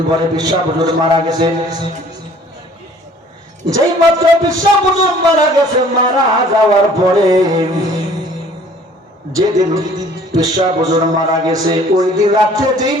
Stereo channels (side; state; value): both; normal; correlation 0.54